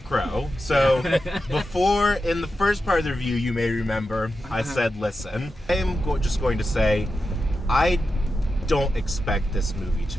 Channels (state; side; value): normal; both; correlation 0.90